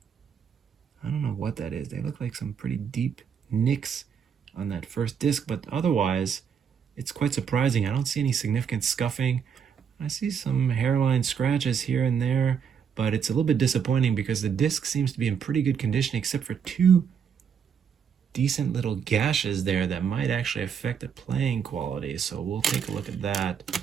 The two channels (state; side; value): quieter; left; 7.3 dB